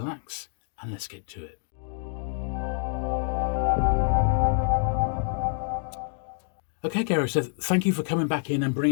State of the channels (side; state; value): right; silent; digital silence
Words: and let's get to it. Okay, Gary, so thank you for coming back in and